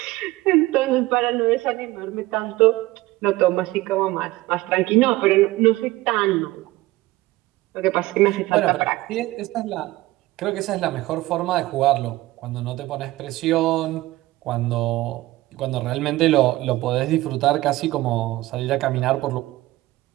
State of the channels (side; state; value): left; quieter; 18.2 dB